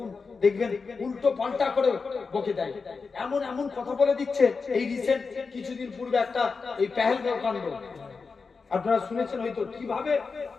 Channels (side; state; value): right; quieter; 4.7 dB